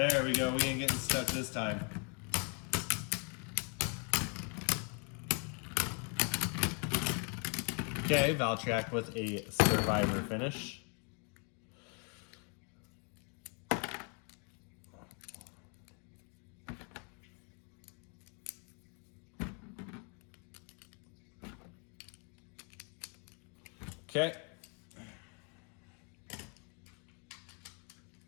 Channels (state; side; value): quieter; right; 38.2 dB